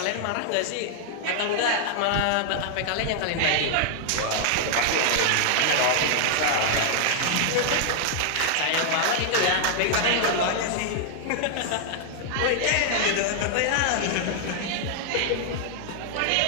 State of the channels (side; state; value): both; different; correlation 0.00